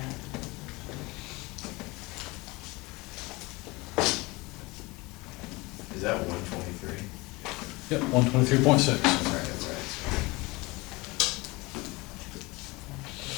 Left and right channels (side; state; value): right; quieter; 23.6 dB